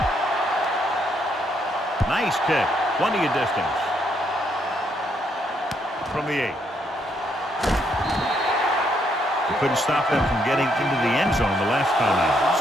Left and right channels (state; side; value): normal; both; correlation 0.74